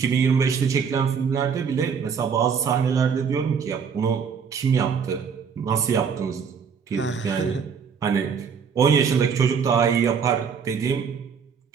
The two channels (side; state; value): left; quieter; 6.5 dB